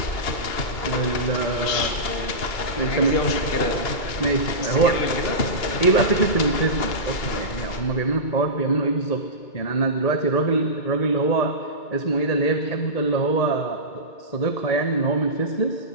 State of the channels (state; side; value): late; right; 2.3 ms